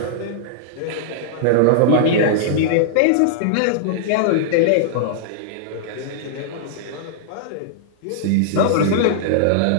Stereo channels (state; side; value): different; both; correlation -0.02